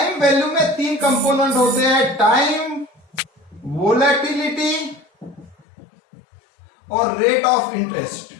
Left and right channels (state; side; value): drops out; right; at 5.7 s